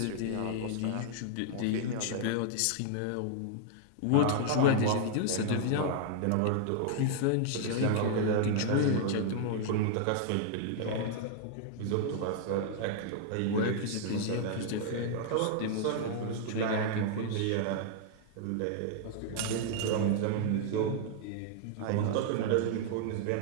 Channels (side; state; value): both; different; correlation -0.01